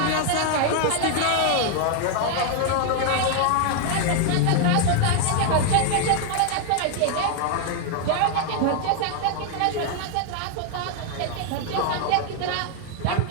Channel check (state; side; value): different; both; correlation 0.00